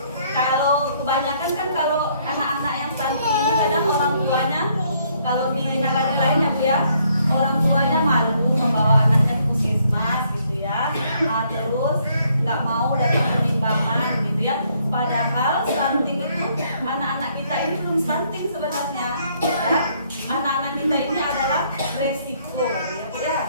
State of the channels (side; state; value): both; inverted; correlation -0.68